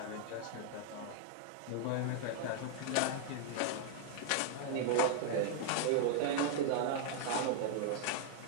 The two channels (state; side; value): different; both; correlation -0.01